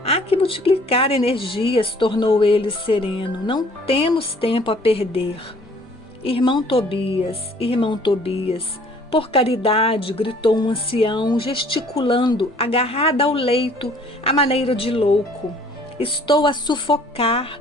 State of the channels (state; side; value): normal; both; correlation 0.56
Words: Há que multiplicar energias, tornou ele sereno. Não temos tempo a perder. Irmão Tobias, por caridade, gritou um ancião, gesticulando, agarrada ao leito, à maneira de louco. Estou a sufocar.